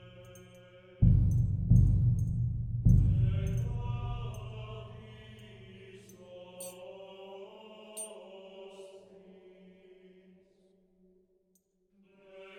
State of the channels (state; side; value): identical; both; correlation 1.00